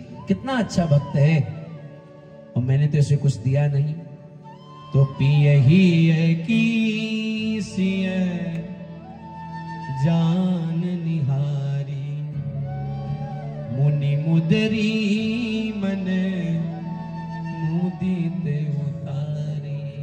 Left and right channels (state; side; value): identical; both; correlation 1.00